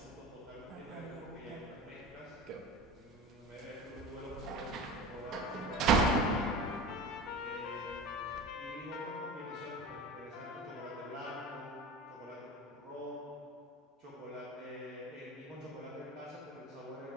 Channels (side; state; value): both; normal; correlation 0.31